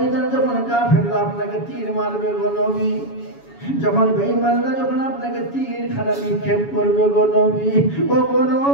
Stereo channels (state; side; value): late; right; 7.1 ms